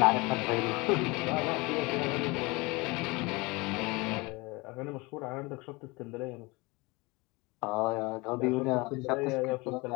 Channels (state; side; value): quieter; right; 25.0 dB